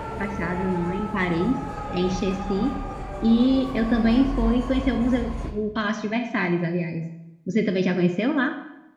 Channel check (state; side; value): identical; both; correlation 1.00